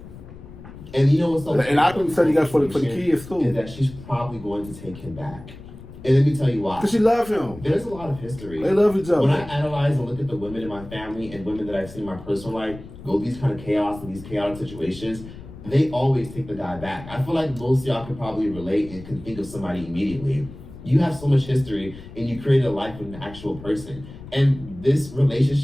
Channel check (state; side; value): noise; left; rumble, 16 dB below the sound